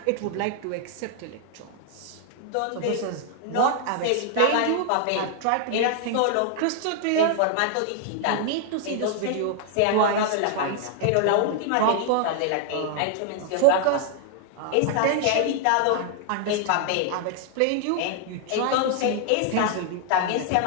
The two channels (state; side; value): different; both; correlation 0.00